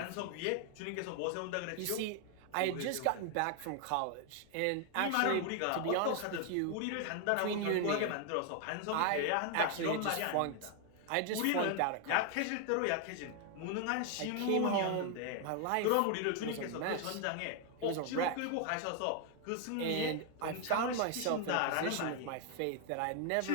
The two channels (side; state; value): both; different; correlation 0.00